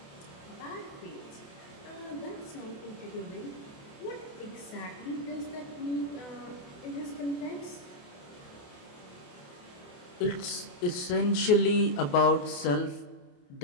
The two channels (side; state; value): right; late; 28 ms